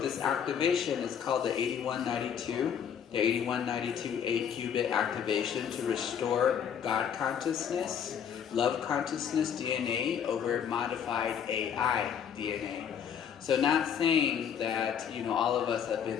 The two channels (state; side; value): quieter; right; 8.2 dB